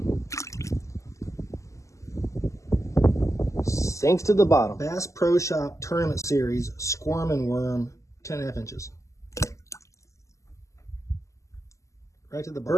Sinks to the bottom. Bass Pro Shop Tournament Series Squirmin' Worm, 10.5 inches. Right to the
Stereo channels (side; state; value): right; late; 0.15 ms